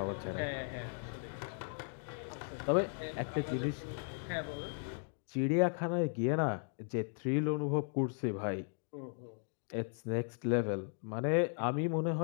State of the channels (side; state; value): right; silent; 53 dB below the other